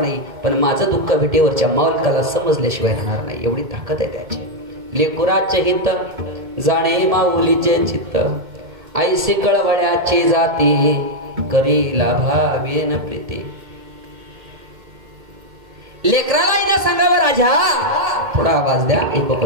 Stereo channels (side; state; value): left; late; 2.2 ms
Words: नाही, पण माझं दुःख विटेवरच्या मालकाला समजल्याशिवाय राहणार नाही. एवढी ताकद आहे त्याची. लेकुराचे हित जाणे माऊलीचे चित्त, ऐसे कळवळ्याची जाती करीला भावेन प्रीती. लेकराला येणं सांगावं राजा, थोडा आवाज द्या, एक